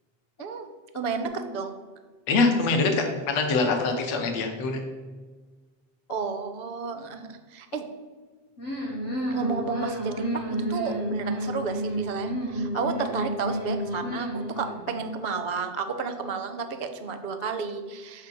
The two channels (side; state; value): right; late; 7.7 ms